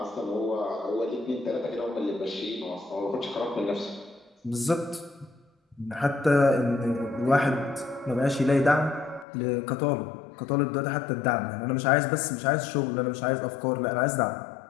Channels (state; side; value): drops out; right; at 9.2 s